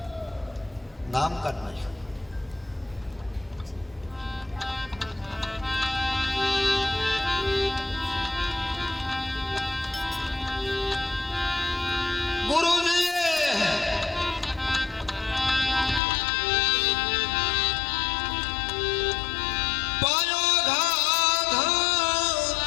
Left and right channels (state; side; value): drops out; right; at 16.0 s